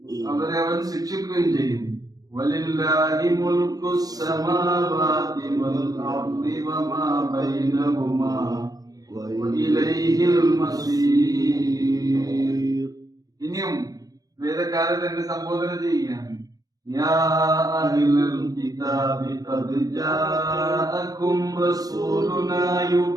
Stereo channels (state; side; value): late; left; 0.18 ms